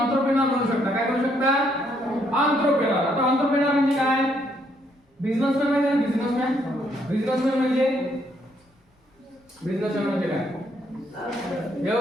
बनू शकता. काय बनू शकता? एंटरप्रेन्योर. आता एंटरप्रेन्योर म्हणजे काय? बिझनेसमॅन म्हणजे बिझनेसमॅन. बिझनेसमॅन म्हणजे काय?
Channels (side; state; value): both; normal; correlation 0.71